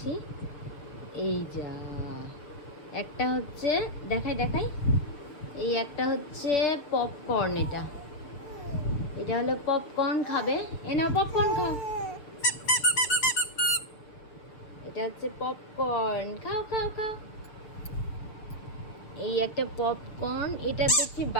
এই যা, একটা হচ্ছে দেখাই দেখাই, এই একটা হচ্ছে পপকর্ন। এটা এটা হলো পপকর্ন, খাবে? এ নাও পপকর্ন খাও। এটা হচ্ছে পপকর্ন, খাও খাও খাও। এই একটা পপকর্ন, এটা দেখছি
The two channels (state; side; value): late; right; 6.5 ms